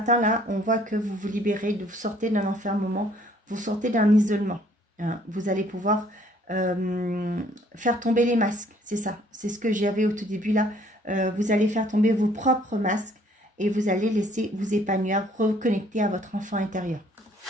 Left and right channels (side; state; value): both; normal; correlation 0.61